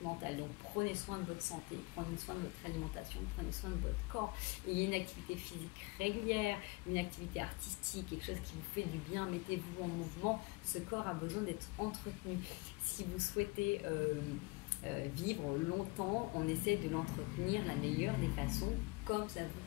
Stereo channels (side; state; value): right; quieter; 25.5 dB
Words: mental. Donc prenez soin de votre santé, prenez soin de votre alimentation, prenez soin de votre corps. Ayez une activité physique régulière, une activité artistique, quelque chose qui vous fait du bien, mettez-vous en mouvement. Ce corps a besoin d'être entretenu. Si vous souhaitez vivre longtemps, on essaie de l'entretenir la meilleure des façons, comme ça